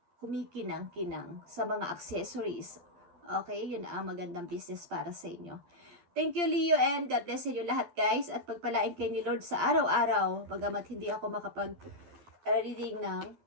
kumikinang-kinang, sa mga accessories. Okay, yun ang magandang business para sa inyo. Thank you, Leo, and God bless sa inyo lahat, guys. At pagpalain kayo ni Lord sa araw-araw, bagamat hindi ako makapag-reading ng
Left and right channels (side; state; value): left; late; 12 ms